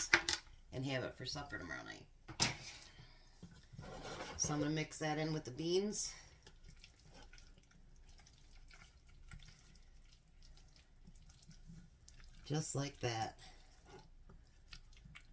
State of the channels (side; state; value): both; identical; correlation 1.00